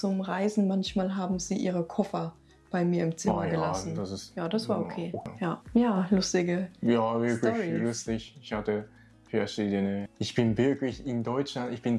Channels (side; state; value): both; identical; correlation 1.00